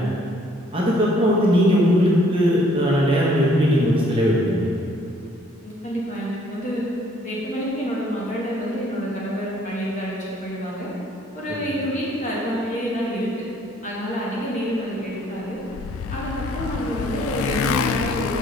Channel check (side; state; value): both; normal; correlation 0.62